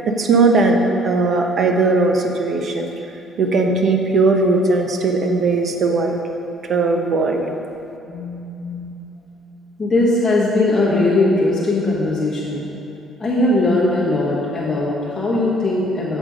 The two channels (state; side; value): normal; both; correlation 0.55